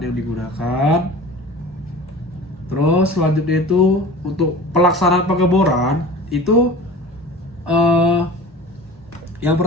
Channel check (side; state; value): both; normal; correlation 0.38